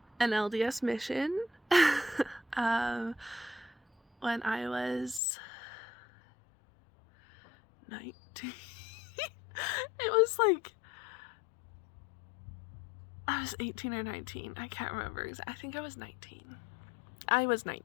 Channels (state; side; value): drops out; right; at 5.2 s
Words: an LDS mission when I was 19. It was like I was 18 or 19. I can't remember. I think I was 19. I was